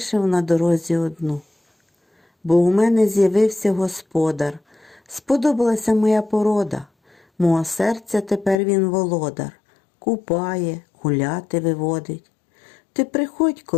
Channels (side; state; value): right; drops out; at 8.6 s